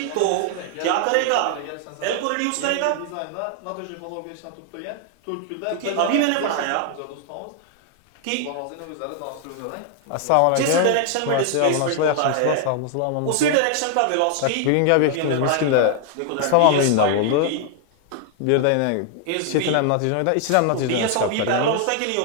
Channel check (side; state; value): both; different; correlation 0.00